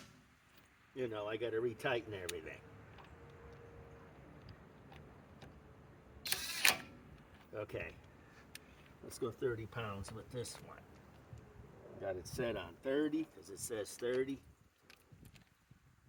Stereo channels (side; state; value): both; identical; correlation 1.00